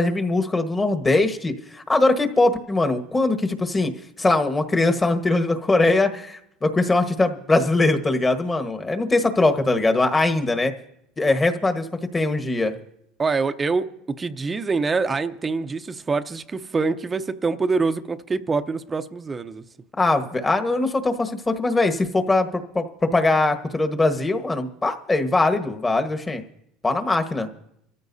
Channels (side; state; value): both; normal; correlation 0.86